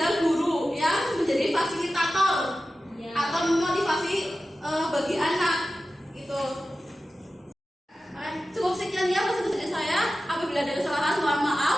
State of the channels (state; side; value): normal; both; correlation 0.94